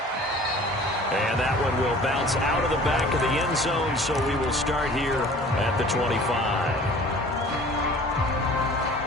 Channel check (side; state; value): both; normal; correlation 0.47